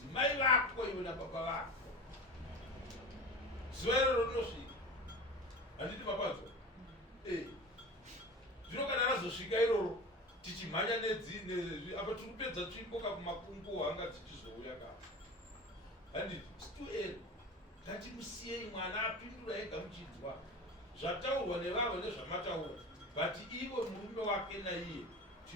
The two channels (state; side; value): normal; both; correlation 0.32